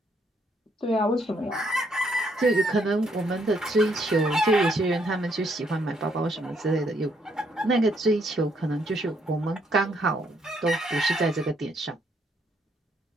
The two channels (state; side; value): normal; both; correlation 0.71